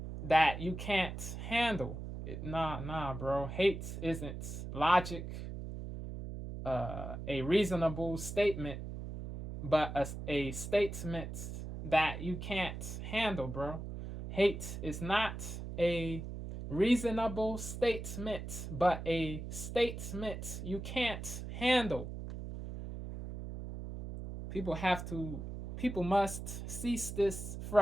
that you can't handle. Nah, bro. Hate isn't logic. a reasonable statement, but a statement that you can't handle, bro. Hate is not a reasonable statement, but a statement you can't handle. People must cease this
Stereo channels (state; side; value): noise; right; hum, 7 dB below the sound